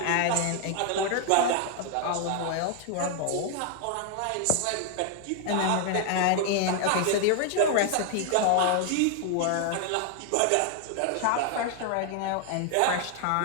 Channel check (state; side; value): different; both; correlation 0.00